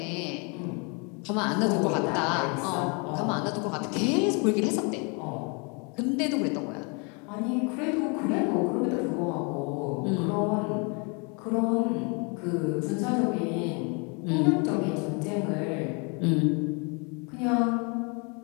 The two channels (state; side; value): quieter; right; 33.5 dB